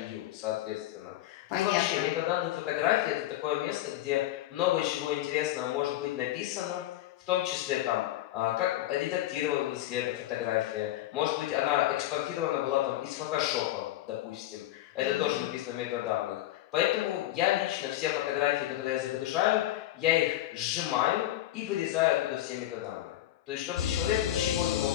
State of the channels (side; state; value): right; quieter; 14.3 dB